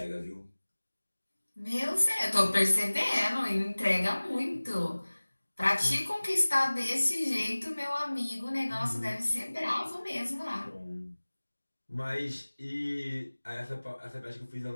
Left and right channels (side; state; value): both; inverted; correlation -1.00